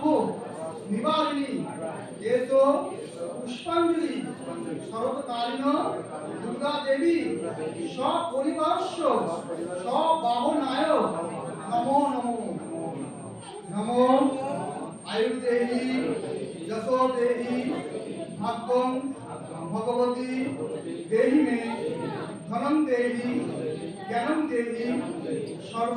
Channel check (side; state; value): both; identical; correlation 1.00